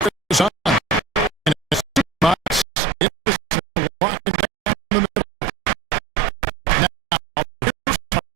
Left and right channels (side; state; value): left; drops out; at 2.7 s